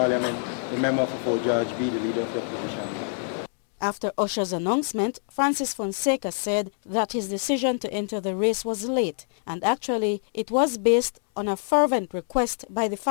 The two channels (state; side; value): silent; right; 61 dB below the other